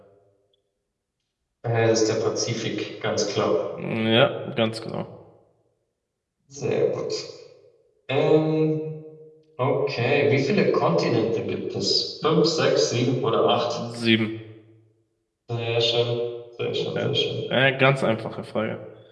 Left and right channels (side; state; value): both; identical; correlation 1.00